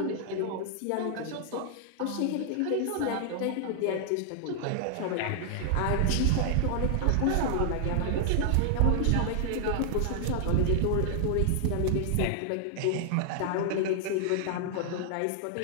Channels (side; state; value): both; different; correlation -0.01